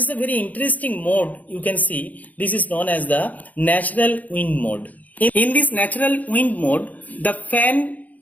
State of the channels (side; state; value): right; late; 0.078 ms